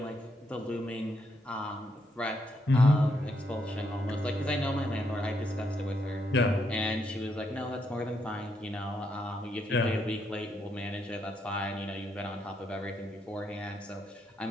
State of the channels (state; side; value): normal; both; correlation 0.77